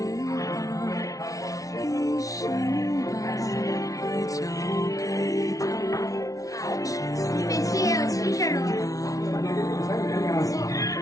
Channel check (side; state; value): right; late; 0.17 ms